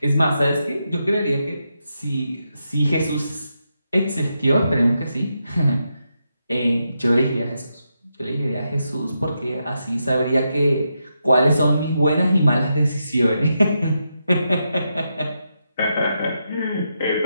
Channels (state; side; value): inverted; both; correlation -0.85